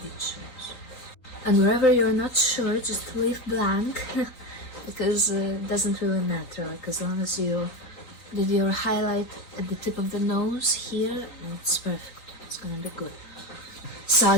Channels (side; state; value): right; late; 3.9 ms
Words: And wherever you're not sure, just leave blank, because it doesn't really matter. Like, as long as you did your highlight at the tip of the nose here, it's perfect. It's gonna be good. So